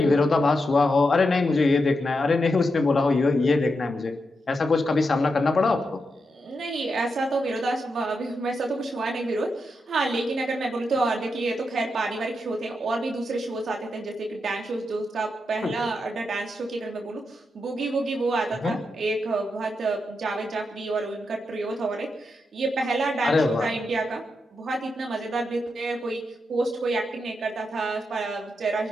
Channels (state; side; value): normal; both; correlation 0.85